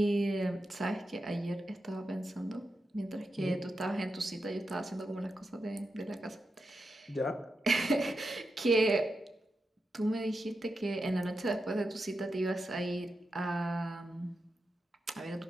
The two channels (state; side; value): normal; both; correlation 0.88